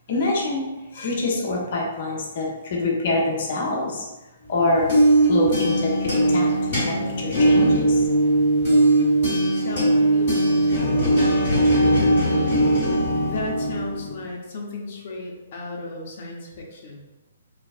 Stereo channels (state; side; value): inverted; both; correlation -0.68